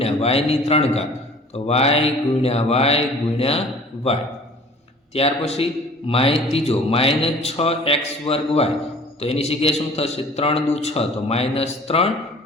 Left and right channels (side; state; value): both; normal; correlation 0.48